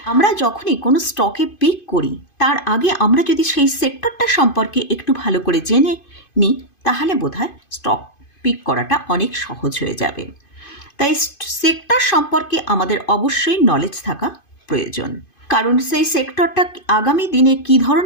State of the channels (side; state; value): right; late; 2.5 ms